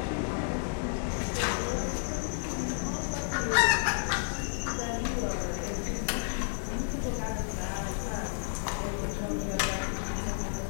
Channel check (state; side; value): silent; right; digital silence